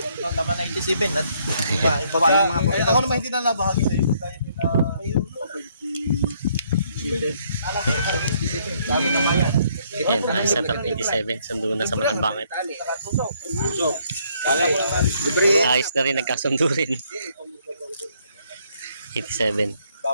Tama na 87 at iba yung mga pagkakas. Ako naman hindi na nabahagi sa'yo. Sabi naman yan. Ayan, ayos na to, 87. Sundo na sa Makan Bakit. Ayos na rin, nagkasundo rin. 87.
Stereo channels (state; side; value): inverted; both; correlation -0.68